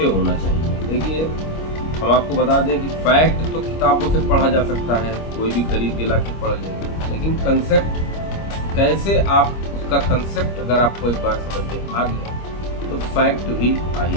होना चाहिए। देखिए, हम आपको बता दें कि फैक्ट तो किताबों से पढ़ा जा सकता है, कोई भी खरीद के लाके पढ़ लेगा, लेकिन कंसेप्ट कैसे आप उसका कंसेप्ट अगर आपको एक बार समझ में आ गया तो फैक्ट भी आ ही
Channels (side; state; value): right; late; 25 ms